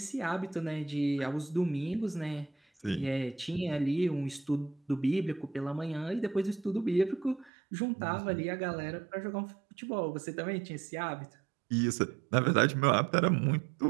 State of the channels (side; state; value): left; drops out; at 7.5 s